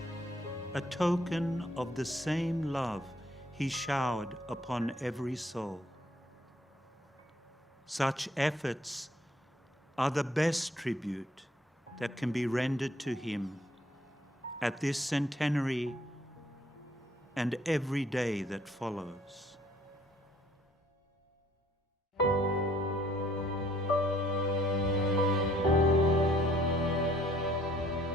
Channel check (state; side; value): normal; both; correlation 0.62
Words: a token of the same love He showered upon every soul. Such efforts are the best tribute that can be rendered to Him at this centenary and every day that follows.